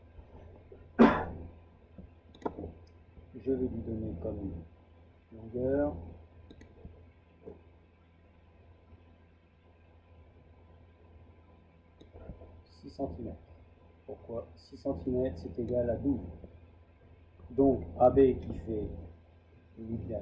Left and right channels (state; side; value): identical; both; correlation 1.00